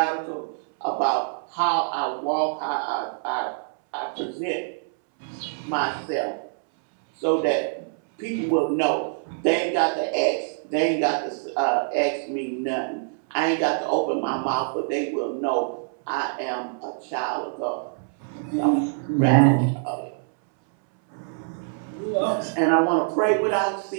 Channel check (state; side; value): silent; left; 62 dB below the other